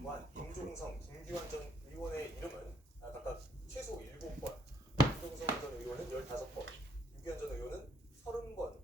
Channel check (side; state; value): both; normal; correlation 0.69